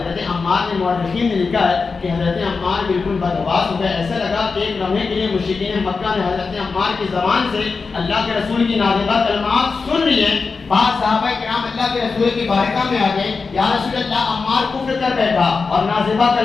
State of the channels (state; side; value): quieter; right; 4.6 dB